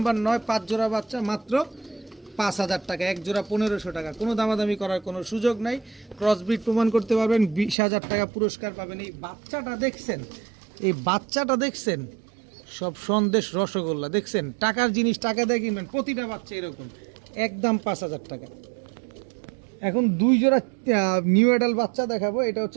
9, 5 জোড়া বাচ্চা, মাত্র 5000 টাকা। এক জোড়া 1500 টাকা। কোনো দামাদামি করার কোনো সুযোগ নাই। ক্রসব্রিড প্রমাণ করতে পারবেন, 20000 টাকা পুরস্কার পাবেন। এই বাচ্চাটা দেখছেন, এই বাচ্চাটা দেখছেন, সব সন্দেশ রসগোল্লা দেখছেন। টাকার জিনিস টাকা দিয়ে কিনবেন, প্রতিটা বাচ্চা এরকম, একদম 5000 টাকা। এখন 2 জোড়া নিউ অ্যাডাল্ট বাচ্চা দেখাবো। এটা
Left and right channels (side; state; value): left; drops out; at 7.8 s